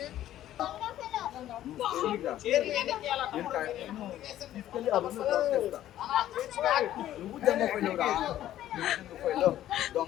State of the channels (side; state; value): right; quieter; 12.7 dB